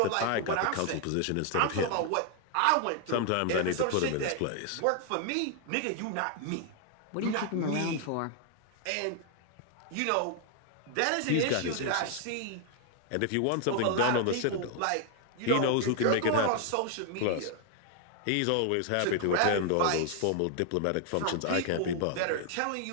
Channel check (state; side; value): different; both; correlation 0.00